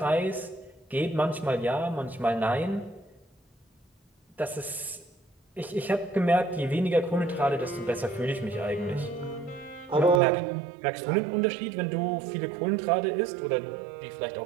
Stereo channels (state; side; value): drops out; left; at 10.2 s